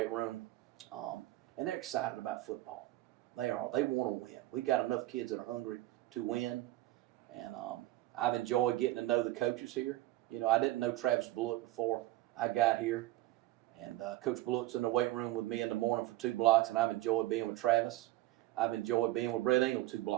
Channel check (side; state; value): left; quieter; 16.8 dB